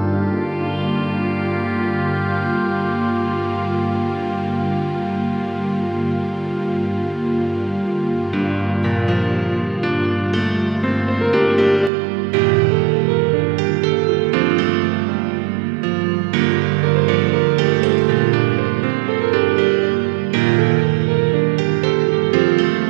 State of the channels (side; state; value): left; drops out; at 11.9 s